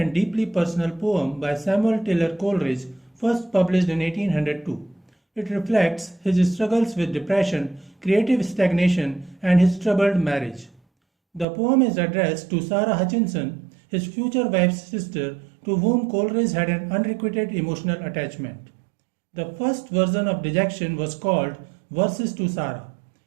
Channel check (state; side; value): drops out; left; at 11.5 s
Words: deeply personal poem by Samuel Taylor Coleridge, first published in 1802. It reflects his struggles with depression, creative stagnation, and his troubled marriage. The poem is addressed to Sara Hutchinson, his future wife's sister, to whom Coleridge had an unrequited emotional attachment. The first version of Dejection was called Verses to Sara.